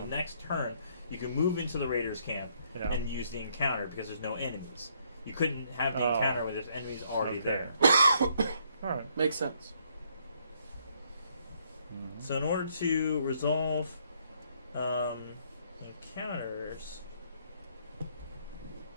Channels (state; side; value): inverted; both; correlation -0.69